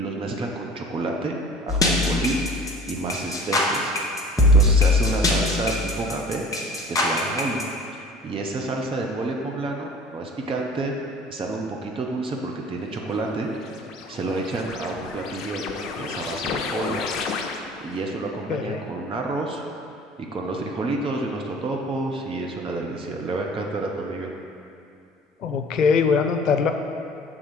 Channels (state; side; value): normal; both; correlation 0.46